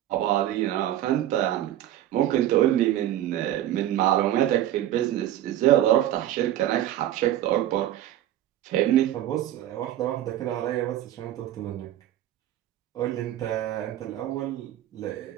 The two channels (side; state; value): left; quieter; 12.8 dB